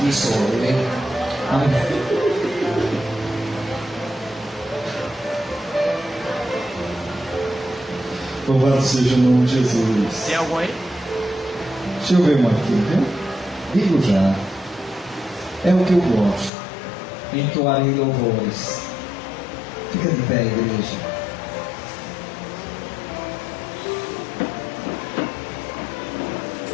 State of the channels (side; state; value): right; drops out; at 16.5 s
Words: sou eu. Amém. Louvado seja o nome de Jesus. Tem algum aí? Deixa eu ver uma aqui, viu? Digo já. É o que eu gosto. Entoarei louvores. Fica de pé, igreja.